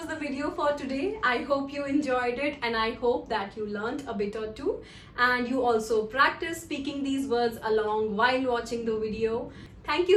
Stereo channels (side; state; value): both; identical; correlation 1.00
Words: the video for today. I hope you enjoyed it, and I hope that you learned a bit or two and you also practice speaking these words along while watching the video. Thank